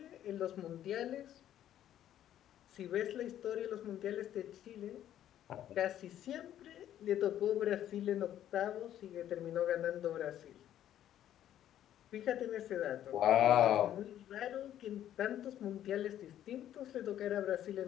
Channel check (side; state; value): right; quieter; 11.4 dB